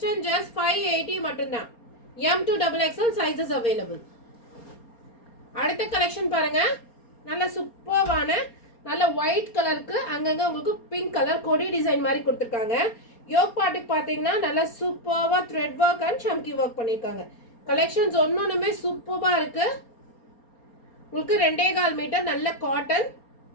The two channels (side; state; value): right; late; 4.3 ms